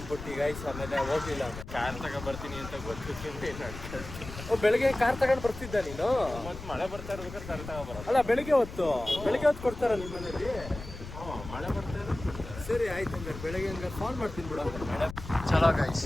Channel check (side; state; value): left; noise; rumble, 11 dB below the sound